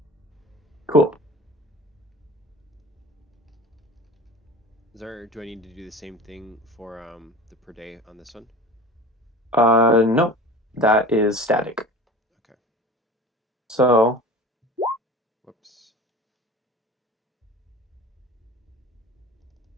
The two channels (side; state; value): both; normal; correlation 0.37